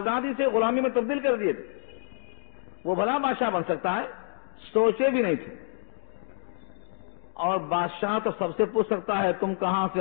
سے غلامی میں تبدیل کر دیے تھے، وہ بھلا بادشاہ بن سکتا ہے؟ سوچے بھی نہیں تھے. اور بادشاہ تو سب سے پوچھ سکتا ہے تم کہاں سے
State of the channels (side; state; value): right; silent; digital silence